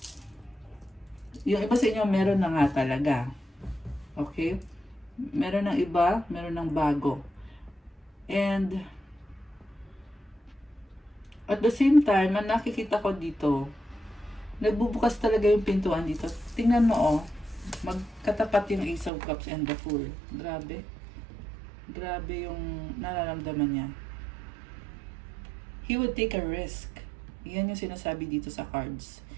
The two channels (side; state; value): left; drops out; at 19.1 s